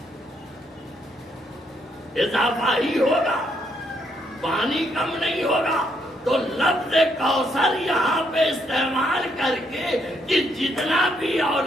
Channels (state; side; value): normal; both; correlation 0.74